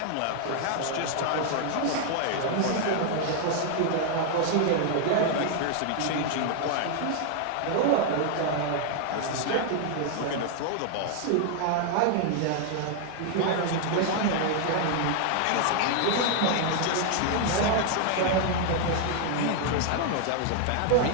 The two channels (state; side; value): different; both; correlation 0.00